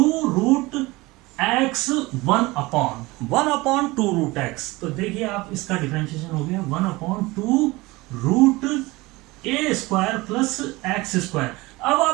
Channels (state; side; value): quieter; left; 21.7 dB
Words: 1/2√x। तो देखिए आप, इसका डिफरेंशिएशन हो गया 1/2√a² प्लस x²। अब